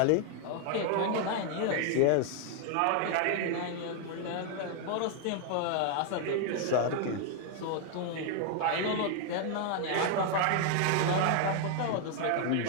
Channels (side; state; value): both; different; correlation 0.00